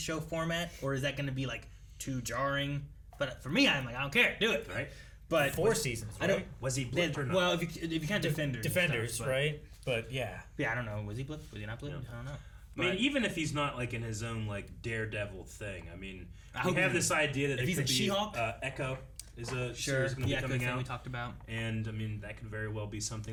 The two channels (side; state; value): both; identical; correlation 1.00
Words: format, or is that going to be like too jarring? But for me, I'm like, I don't care, do it. Right. But 4 seasons, I don't. right? Was he blipped or not? Well, if you can't Defenders, and Defenders, stuff, but- right? But yeah. Yeah, I don't know. Was he blipped? Was he not blipped? I don't know. I mean, But- even if he's not like in his own like Daredevil thing, I mean, I we hope have he- this idea that if it he's could a be She-Hulk? Echo is a Sure, series going to the be Echo coming thing out. we talked about. And I mean, that could very well be